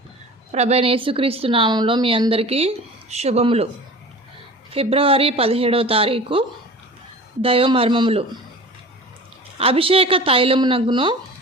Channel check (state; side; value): normal; both; correlation 0.38